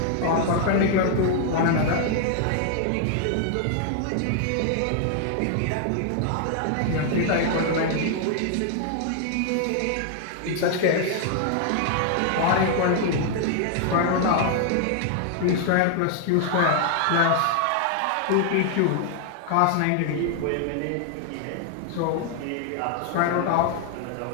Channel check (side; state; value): both; different; correlation 0.00